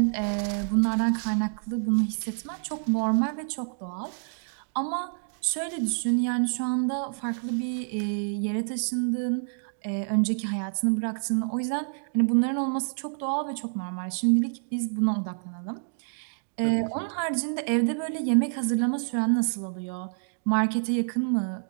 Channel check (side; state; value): left; silent; digital silence